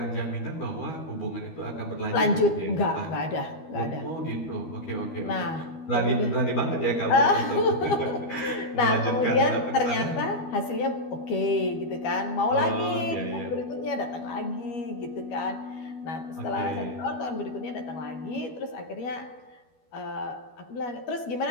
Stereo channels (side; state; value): right; late; 12 ms